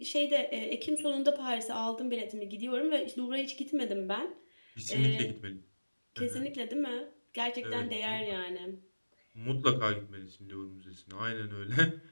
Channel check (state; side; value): inverted; both; correlation -1.00